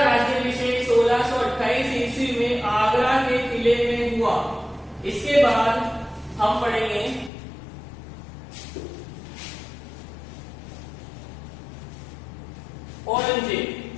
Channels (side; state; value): right; drops out; at 7.3 s